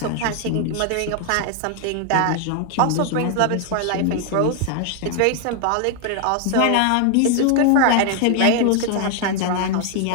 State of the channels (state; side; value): different; both; correlation 0.00